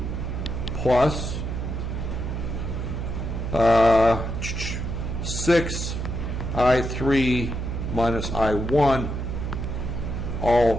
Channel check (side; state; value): right; noise; hum, 3 dB below the sound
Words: plus 6 I3 minus I1